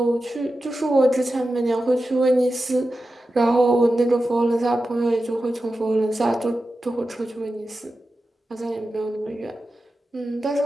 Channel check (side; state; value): both; normal; correlation 0.92